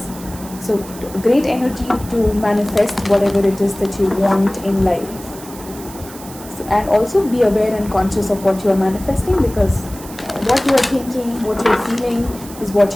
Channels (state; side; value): noise; right; hiss, 17 dB below the sound